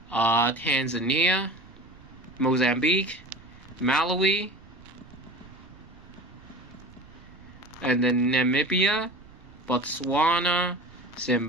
Tanzania, Mozambique, Malawi, and then Namibia, Botswana,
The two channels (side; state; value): right; noise; rumble, 23 dB below the sound